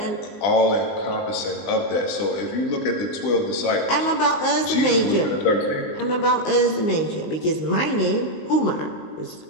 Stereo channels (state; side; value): late; right; 19 ms